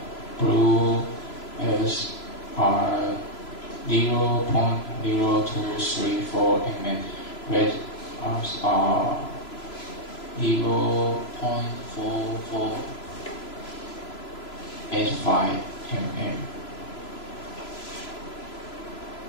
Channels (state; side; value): late; right; 3.0 ms